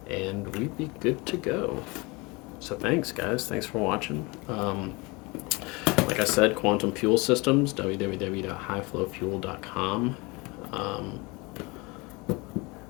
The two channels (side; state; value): right; quieter; 26.1 dB